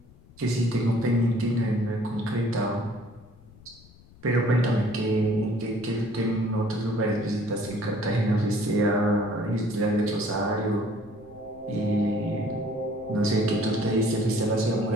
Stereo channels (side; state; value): left; noise; rumble, 24 dB below the sound